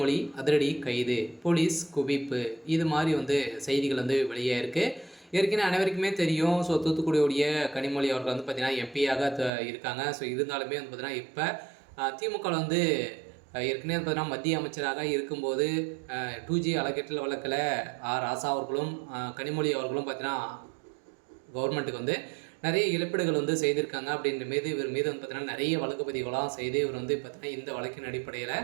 அதிரடி கைது, போலீஸ் குவிப்பு, இது மாதிரி செய்திகள் வெளியாயிருக்கு. ஏற்கனவே அனைவருக்குமே தெரியும். தூத்துக்குடியுடைய கனிமொழி அவர்கள் பார்த்தீங்கன்னா எம்பியாக இருக்காங்க. இருந்தாலுமே பார்த்தீங்கன்னா இப்போ திமுக ஏற்கனவே பார்த்தீங்கன்னா மத்திய அமைச்சராக இருக்கும்போது 2G அறக்கட்டளை வழக்கில் ராசா அவர்களும் கனிமொழி அவர்களும் பார்த்தீங்கன்னா கவர்மெண்ட்டுக்கு நிறைய இழப்பீடுகள் செய்திருக்காங்க. அப்படின்ற மீது இவர் மீது பார்த்தீங்கன்னா நிறைய வழக்கு பதிவுகளாம் செய்து இவர் பார்த்தீங்கன்னா இந்த வழக்கின் அடிப்படையில்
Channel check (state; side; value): drops out; left; at 9.5 s